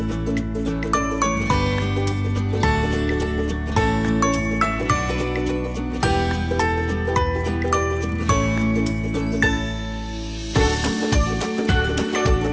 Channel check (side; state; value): both; identical; correlation 1.00